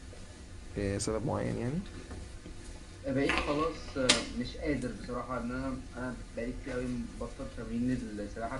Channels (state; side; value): identical; both; correlation 1.00